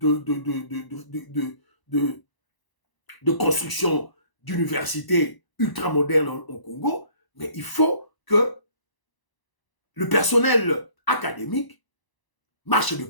construction d'universités ultramodernes au Congo, mais il faut que le personnel académique marche de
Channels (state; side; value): late; right; 1.0 ms